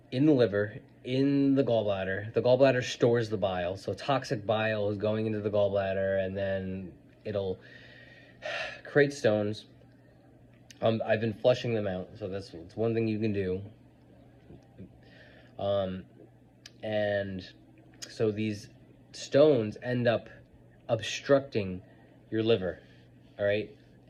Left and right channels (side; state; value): both; identical; correlation 1.00